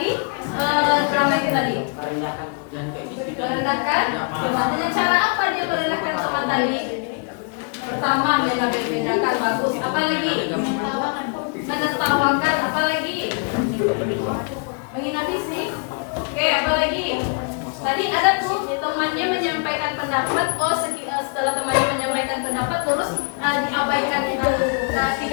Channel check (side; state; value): right; quieter; 39.8 dB